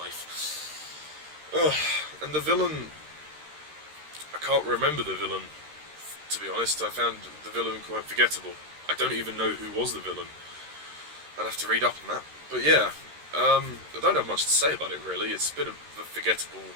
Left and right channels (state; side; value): late; left; 13 ms